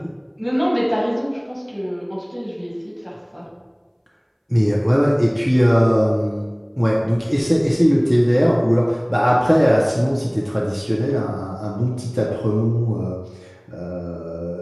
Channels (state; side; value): identical; both; correlation 1.00